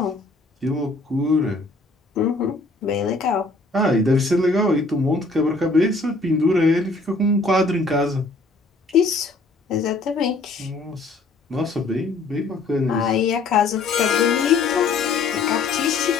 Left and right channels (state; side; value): quieter; right; 3.6 dB